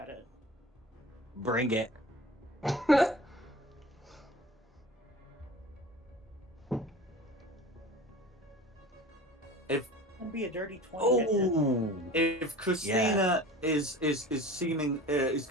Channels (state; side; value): normal; both; correlation 0.39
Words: it. Bring it. If It'll be a dirty 20. Oh, if Christina is seeming is